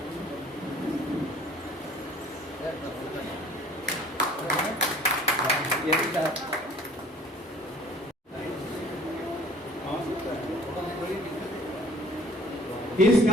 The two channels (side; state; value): both; normal; correlation 0.53